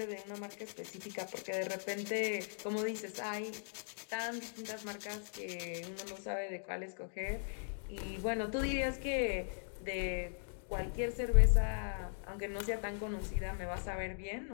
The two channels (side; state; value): right; silent; digital silence